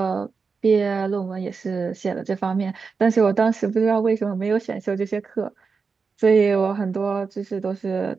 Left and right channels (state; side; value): quieter; left; 5.0 dB